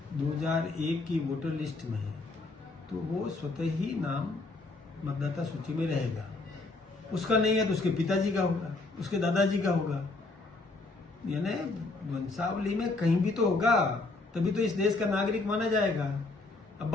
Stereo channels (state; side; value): quieter; right; 3.4 dB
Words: 2001 की वोटर लिस्ट में है तो वो स्वतः ही नाम मतदाता सूची में रहेगा। उसका नहीं है तो उसके पिताजी का होगा, उसके दादाजी का होगा। यानी वंशावली में कहीं भी तो होगा, तभी तो इस देश का नागरिक माना जाएगा। अब